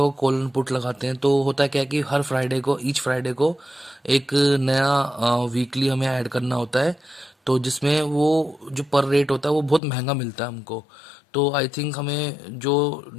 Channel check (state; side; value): drops out; right; at 9.8 s